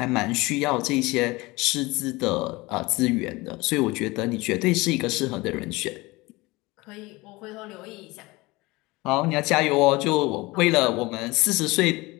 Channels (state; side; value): quieter; right; 22.2 dB